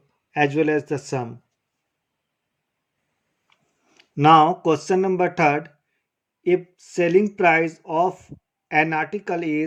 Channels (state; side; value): identical; both; correlation 1.00